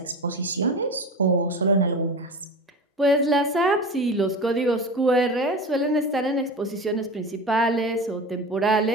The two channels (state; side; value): normal; both; correlation 0.29